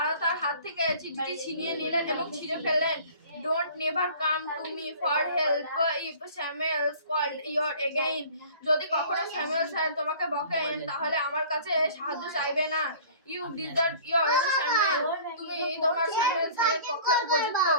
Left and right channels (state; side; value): inverted; both; correlation -0.47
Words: তার হাত থেকে চিঠিটি ছিনিয়ে নিলেন এবং ছিঁড়ে ফেললেন। Don't never come to me for help if Samuel called you again. যদি কখনো স্যামুয়েল স্যার তোমাকে বকেন তাহলে আমার কাছে সাহায্য চাইবে না। You deserve your Samuel. তুমি তোমার স্যামুয়েল স্যারের পক্ষে উপযুক্ত।